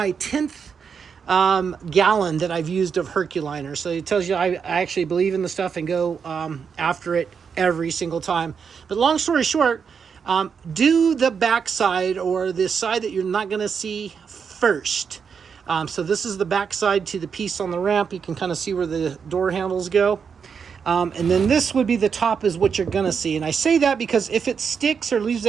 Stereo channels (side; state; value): left; quieter; 6.4 dB